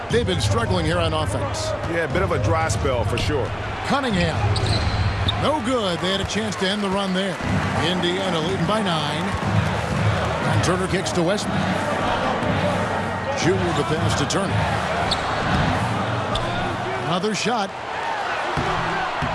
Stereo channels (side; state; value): both; identical; correlation 1.00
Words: They've been struggling here on offense. Yeah, a bit of a dry spell for sure. Cunningham. No good. They had a chance to end the run there. Indiana leading by 9. And Turner kicks to Westbrook. Junior the pass to Turner. Another shot.